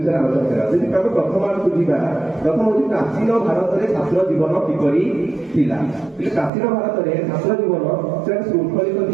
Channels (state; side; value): drops out; left; at 6.5 s